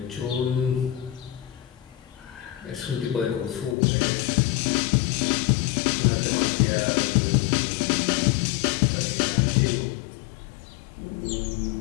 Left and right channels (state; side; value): drops out; right; at 3.8 s